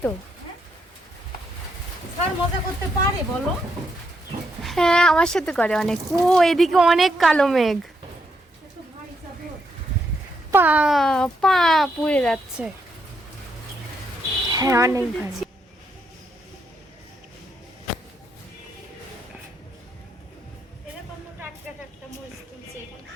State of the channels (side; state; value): both; normal; correlation 0.78